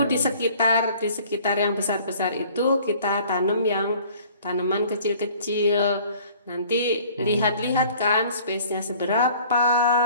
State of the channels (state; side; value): inverted; both; correlation -0.52